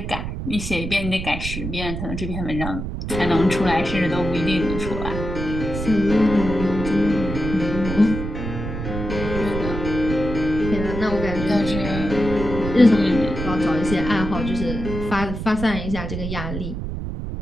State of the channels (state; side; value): noise; right; rumble, 6 dB below the sound